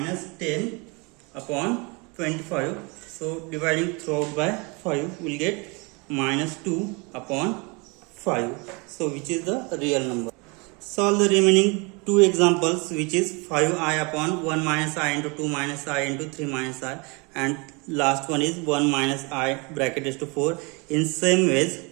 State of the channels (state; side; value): quieter; left; 29.7 dB